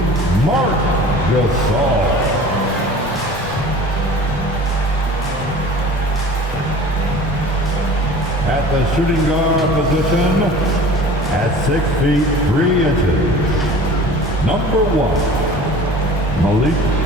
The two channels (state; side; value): normal; both; correlation 0.42